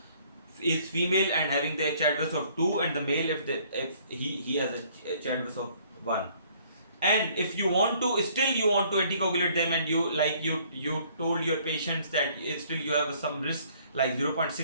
female and having the Chadwiss of 2, and the male if he has a Chadwiss of 1. And if you want to anticoagulate them, and you told your patients that still you have some risk like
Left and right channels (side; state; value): both; inverted; correlation -0.60